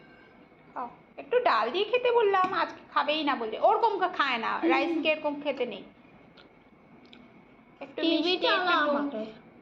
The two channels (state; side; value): identical; both; correlation 1.00